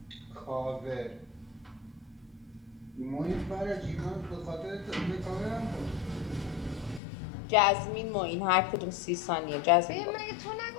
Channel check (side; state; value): right; drops out; at 7.0 s